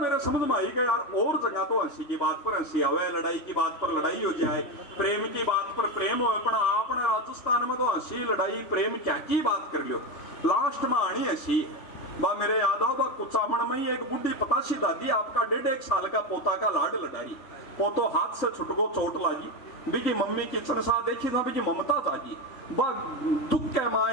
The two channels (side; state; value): right; late; 3.5 ms